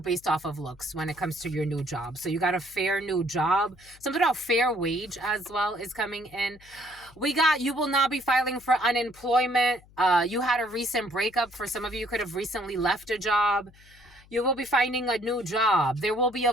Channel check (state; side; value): noise; left; hum, 26 dB below the sound